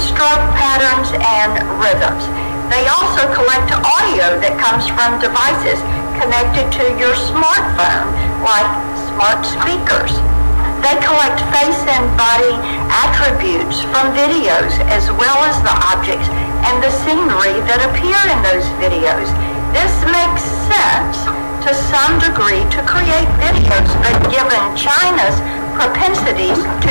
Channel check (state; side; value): inverted; both; correlation -1.00